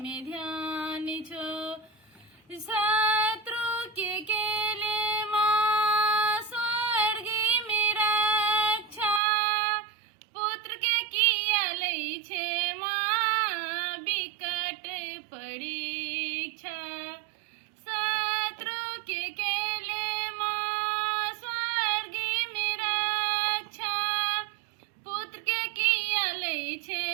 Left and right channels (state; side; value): drops out; left; at 9.2 s